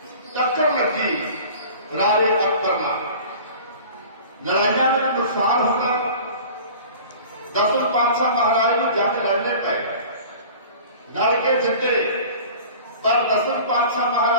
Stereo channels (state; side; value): inverted; both; correlation -0.41